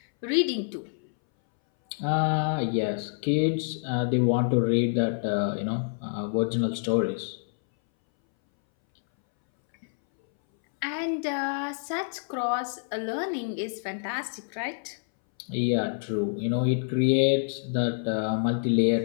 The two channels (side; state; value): right; silent; 60 dB below the other